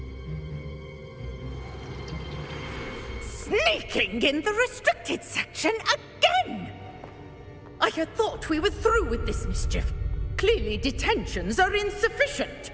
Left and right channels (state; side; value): identical; both; correlation 1.00